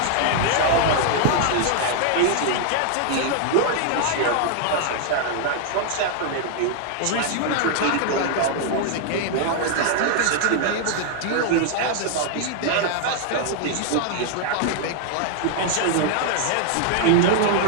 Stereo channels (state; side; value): different; both; correlation 0.00